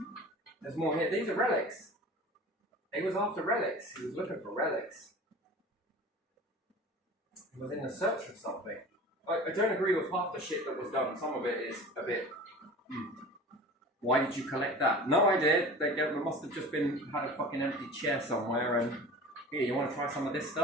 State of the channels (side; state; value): both; normal; correlation 0.38